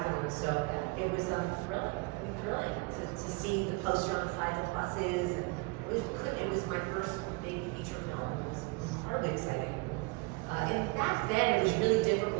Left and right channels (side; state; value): left; quieter; 27.0 dB